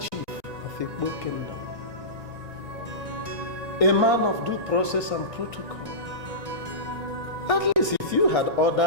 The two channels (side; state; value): left; late; 1.9 ms